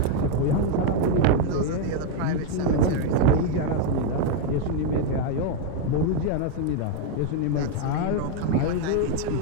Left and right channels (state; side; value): different; both; correlation 0.01